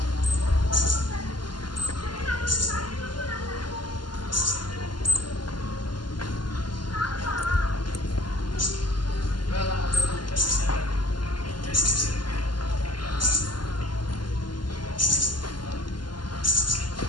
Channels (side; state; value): right; late; 0.71 ms